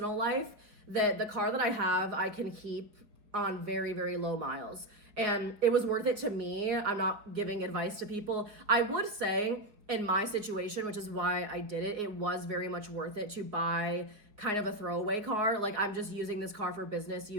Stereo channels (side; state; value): left; late; 4.7 ms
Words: life, that the car that I have, I can keep on very, very low miles. And it was worth it to me. I'm not giving advice to people. I would say in my situation, which is why I did it, it was very much worth it to buy kind of a throwaway car. Like I'm just using this car for business